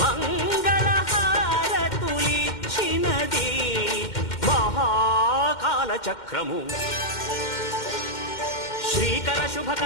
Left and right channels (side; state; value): right; late; 2.1 ms